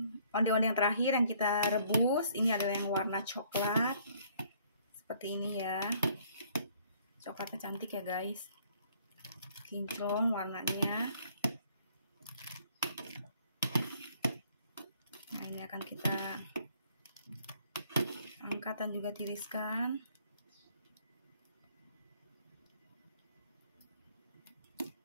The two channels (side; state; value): both; inverted; correlation -0.62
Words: onde-onde yang terakhir yang kita rebus. Ini adalah yang warna coklat. Seperti ini ya. Coklatnya cantik ya guys. Kinclong warnanya. Nah, ini akan kita angkat dan juga tiriskan.